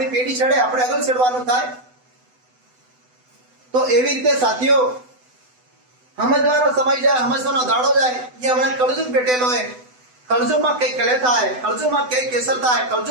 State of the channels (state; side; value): late; left; 8.0 ms